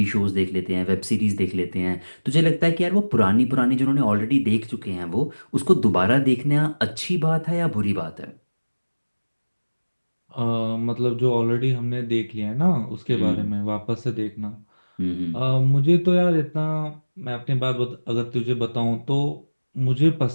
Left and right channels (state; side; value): inverted; both; correlation -1.00